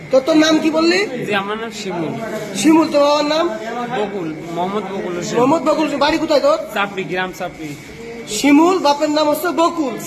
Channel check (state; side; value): identical; both; correlation 1.00